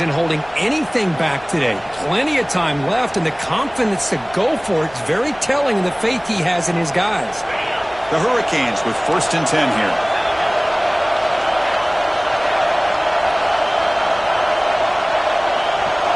holding anything back today. Plenty of time left, and the confidence to go for it is very telling of the faith he has in his guys. The Hurricanes with 1st and 10 here.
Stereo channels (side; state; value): left; noise; rumble, 25 dB below the sound